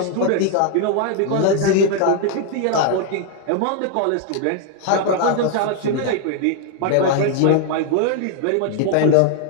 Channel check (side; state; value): both; different; correlation 0.00